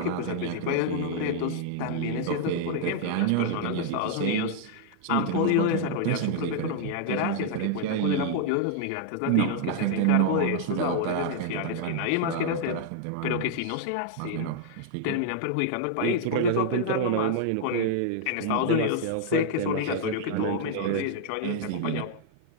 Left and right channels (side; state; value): both; different; correlation -0.01